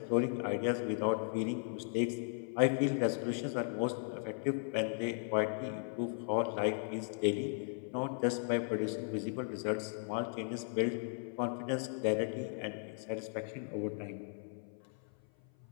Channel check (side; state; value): right; silent; 53 dB below the other